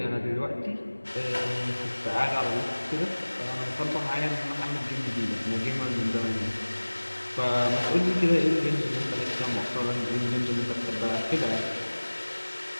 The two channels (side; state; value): both; inverted; correlation -1.00